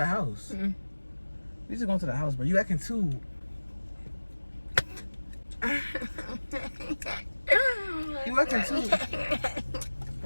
house. Mm. We just going to the house, bro. You acting too. You acting too.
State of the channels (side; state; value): both; inverted; correlation -1.00